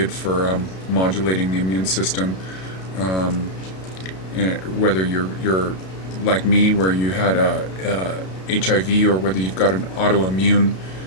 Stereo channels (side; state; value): right; late; 32 ms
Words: for modulating the immune system. Um, Whether you're like me, where you had HIV, or whether you've got an autoimmune